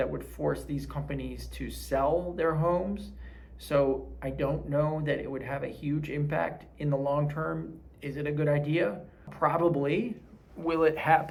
would force these companies to sell their homes. So I don't know that it would have a huge impact in the long term. Is it a good idea? Probably. Will it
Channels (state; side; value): identical; both; correlation 1.00